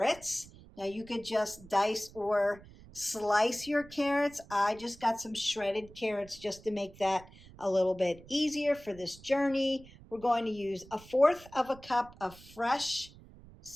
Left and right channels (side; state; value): right; noise; rumble, 21 dB below the sound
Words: Now you could just dice or slice your carrots. I just got some shredded carrots just to make that a little bit easier for this journey. We're going to use 1/4 of a cup of fresh